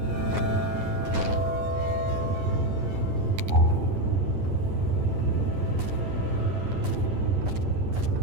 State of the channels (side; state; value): left; late; 9.6 ms